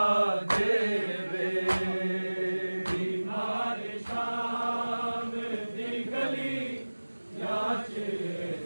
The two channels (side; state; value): both; inverted; correlation -1.00